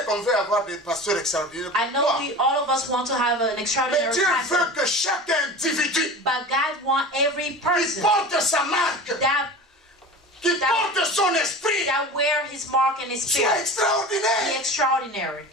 qu'on veut avoir des pasteurs extraordinaires. I know Pourquoi? all of us want to have an Mais extraordinary Dieu veut pastor, que chaque individu but God wants every qui person porte sa marque, qui porte son esprit, that wear his mark and his soit spirit be extraordinaire. extraordinary.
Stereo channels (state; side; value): normal; both; correlation 0.34